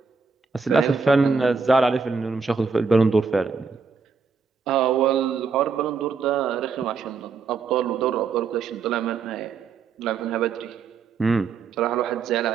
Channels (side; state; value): left; quieter; 5.2 dB